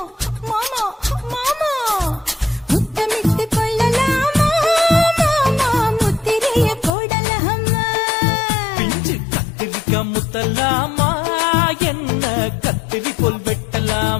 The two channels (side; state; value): right; drops out; at 7.0 s